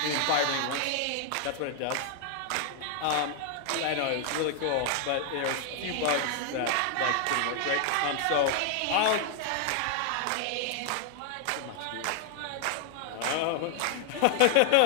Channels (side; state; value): both; different; correlation 0.00